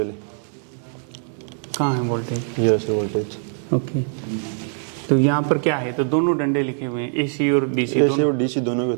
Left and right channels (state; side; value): silent; left; 64 dB below the other